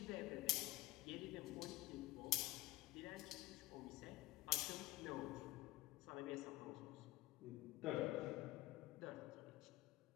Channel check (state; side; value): quieter; right; 16.8 dB